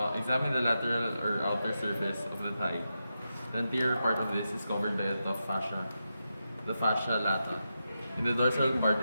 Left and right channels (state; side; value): inverted; both; correlation -0.88